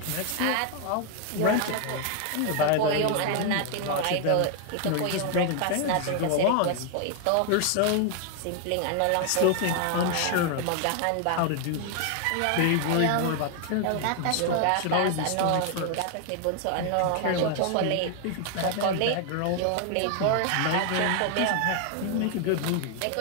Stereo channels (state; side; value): different; both; correlation 0.00